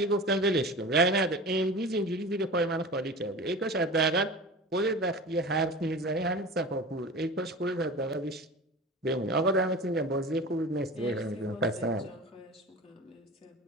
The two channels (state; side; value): normal; both; correlation 0.34